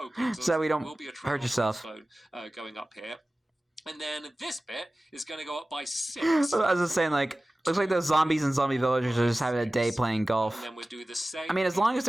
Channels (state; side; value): normal; both; correlation 0.97